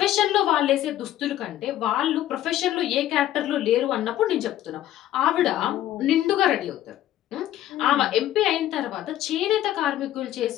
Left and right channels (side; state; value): right; quieter; 13.0 dB